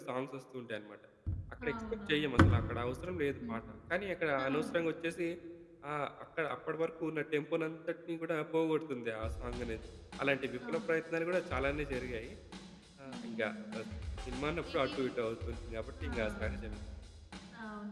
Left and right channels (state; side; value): identical; both; correlation 1.00